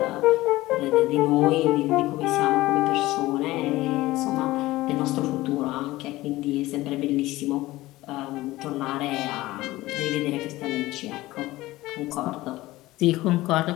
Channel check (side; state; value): right; quieter; 18.0 dB